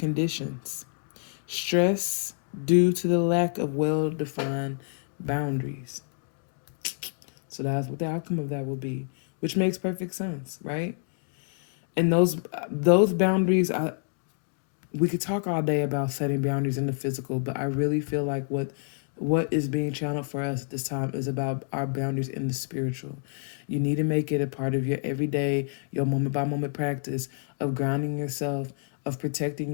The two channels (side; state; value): right; silent; digital silence